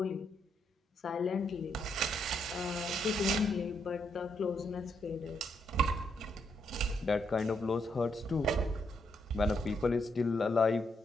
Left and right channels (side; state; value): both; normal; correlation 0.77